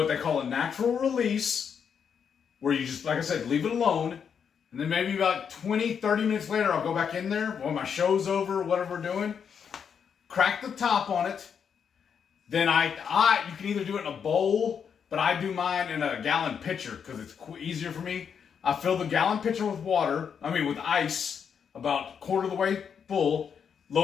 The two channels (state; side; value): quieter; right; 7.2 dB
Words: they call a natural release, where you just, like I said, leave it alone. And then maybe about 20, 30 minutes later, I'll go back in there when my show's over, whatever we're doing, crack the top on it. Then you can either do it in a bowl, but I do mine in a gallon pitcher because it's easier for me. I fill the gallon pitcher with with ice, about quarter of the way full,